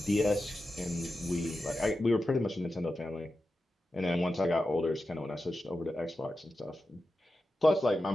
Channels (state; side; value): normal; both; correlation 0.92